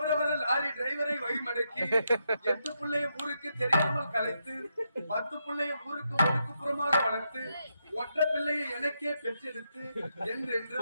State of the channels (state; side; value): inverted; both; correlation -0.82